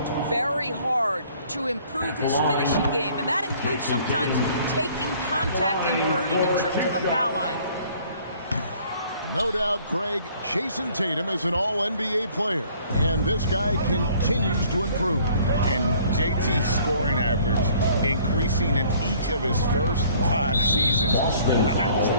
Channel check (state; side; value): inverted; both; correlation -0.57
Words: very hard to improve his finishing game, and that includes sometimes taking contact and earning a trip to the foul line. No doubt, Greg, Jason Tatum is an all-NBA player, and this guy continues to improve. And JT's scoring average increasing in each of his first 5 seasons. I just